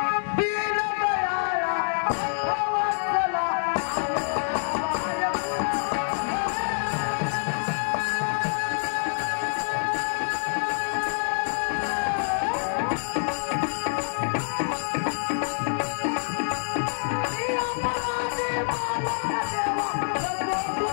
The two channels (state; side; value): silent; right; digital silence